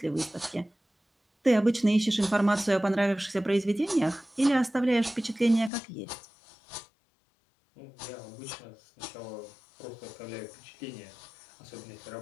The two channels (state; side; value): drops out; right; at 5.7 s